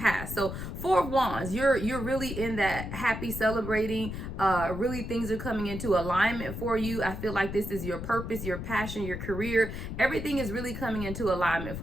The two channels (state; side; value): noise; left; rumble, 7 dB below the sound